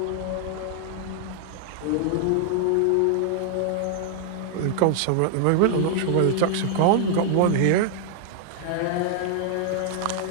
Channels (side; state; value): both; different; correlation 0.00